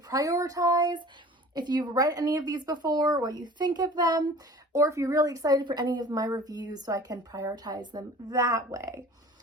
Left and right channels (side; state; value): both; normal; correlation 0.44